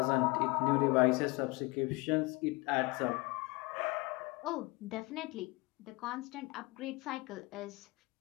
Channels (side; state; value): right; quieter; 24.9 dB